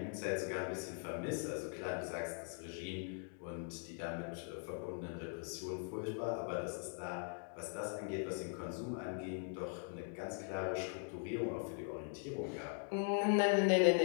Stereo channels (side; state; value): right; silent; 50 dB below the other